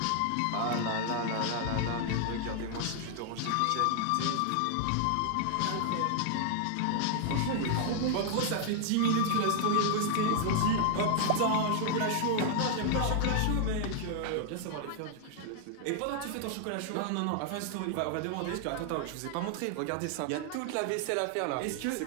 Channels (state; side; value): different; both; correlation 0.00